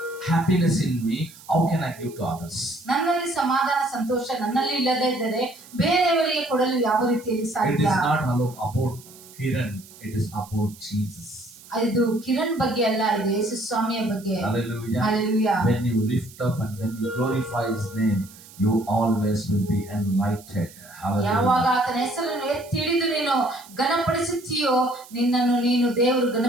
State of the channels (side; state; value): right; noise; hiss, 21 dB below the sound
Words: happiness in me, how can I give to others? ನನ್ನಲ್ಲಿ ಸಮಾಧಾನ ಸಂತೋಷ ನನ್ನಲ್ಲಿ ಇಲ್ಲದೆ ಇದ್ದರೆ ಬೇರೆಯವರಿಗೆ ಕೊಡಲು ಯಾವ ರೀತಿಯಲ್ಲಿ It ಸಾಧ್ಯ? is not about Kiran, it is about Jesus. ಇದು ಕಿರಣ್ ಬಗ್ಗೆ ಅಲ್ಲ, ಇದು ಯೇಸು ಸ್ವಾಮಿಯ ಬಗ್ಗೆ. Hallelujah. Hallelujah. When you lift up and when you glorify His name, you always will be enlightened. ಯಾವಾಗ ಆತನ ಹೆಸರನ್ನು ಎತ್ತಿ ಹಿಡಿದು ನೀನು ಘನಪಡಿಸುತ್ತೀಯೋ ನಿನ್ನನ್ನು ನೀನು ದೇವರು